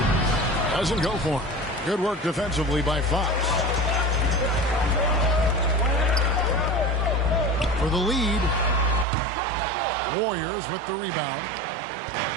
Doesn't go for him. Good work defensively by Fox. For the lead. Warriors with the rebound.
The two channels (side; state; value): left; drops out; at 9.1 s